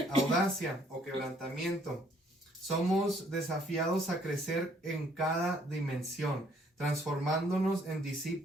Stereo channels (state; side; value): normal; both; correlation 0.64